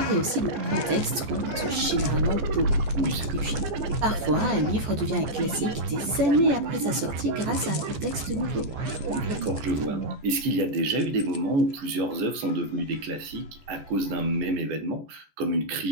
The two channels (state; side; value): late; left; 14 ms